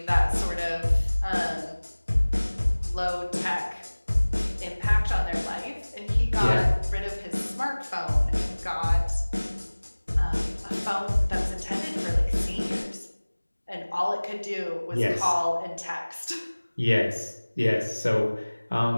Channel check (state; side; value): inverted; both; correlation -1.00